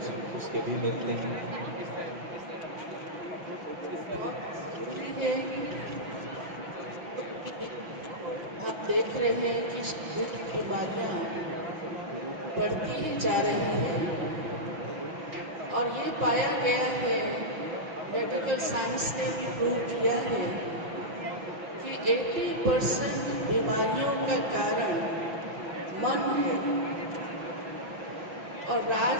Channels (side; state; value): left; late; 6.0 ms